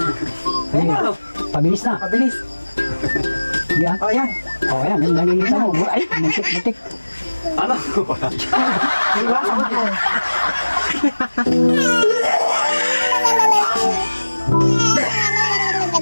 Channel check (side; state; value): both; inverted; correlation -1.00